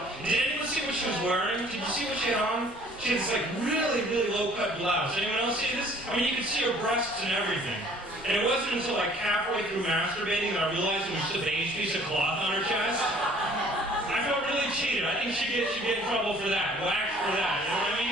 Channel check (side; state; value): both; normal; correlation 0.55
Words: Did anyone see what she was wearing? Did you see what she had on? She had this like really, really low-cut blouse. Anyone else see this? I mean, you could see her breasts and everything. And it wasn't until like halfway through masturbating that I realized it was just a beige piece of cloth on her chest. I felt really cheated. I think she'd get in trouble for that. Whacked for that. You know what I